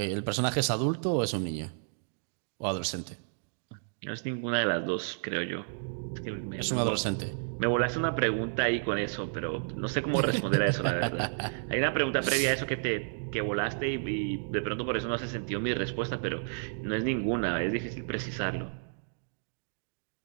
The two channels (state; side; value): silent; left; digital silence